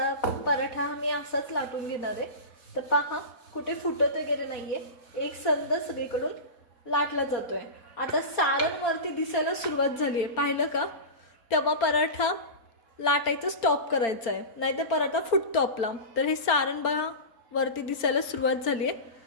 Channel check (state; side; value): late; right; 4.4 ms